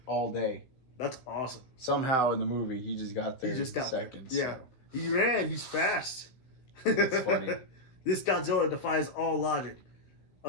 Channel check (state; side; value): late; right; 16 ms